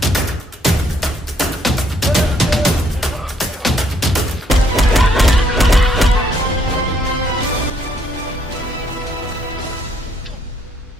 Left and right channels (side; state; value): both; normal; correlation 0.69